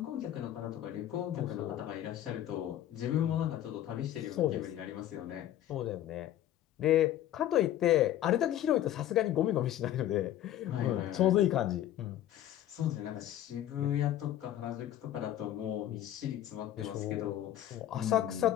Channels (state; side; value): quieter; right; 12.1 dB